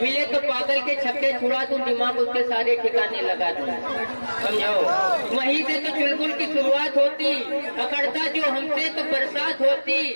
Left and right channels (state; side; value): inverted; both; correlation -1.00